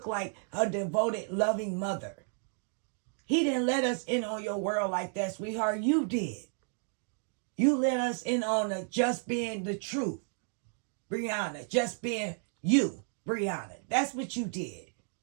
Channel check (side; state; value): left; silent; 56 dB below the other